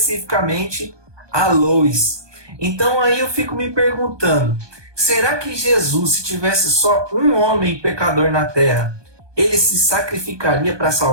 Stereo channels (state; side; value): late; left; 1.2 ms